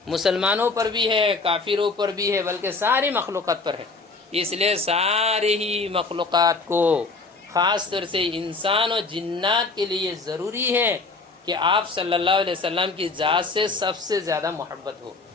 مسلمانوں پر بھی ہے، کافروں پر بھی ہے، بلکہ ساری مخلوقات پر ہے، اس لیے ساری ہی مخلوقات کو، خاص طور سے انسان اور جنات کے لیے ضروری ہے کہ آپ صلی اللہ علیہ وسلم کی ذات سے سب سے زیادہ محبت ہو۔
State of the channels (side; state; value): right; quieter; 3.8 dB